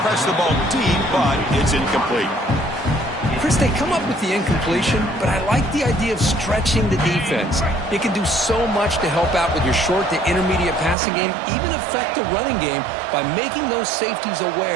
press the ball deep, but it's incomplete. Chris, they come up with the incompletion, but I like the idea of stretching the defense. It can do so much to help out with your short to intermediate passing game, even affect the running game by making those safeties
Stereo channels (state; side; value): drops out; left; at 11.0 s